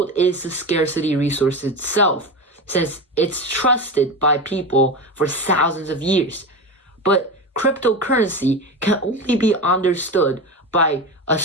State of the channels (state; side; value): normal; both; correlation 0.22